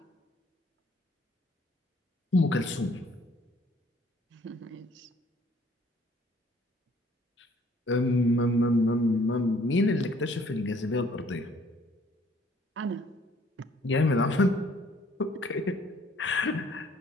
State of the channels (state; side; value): normal; both; correlation 0.60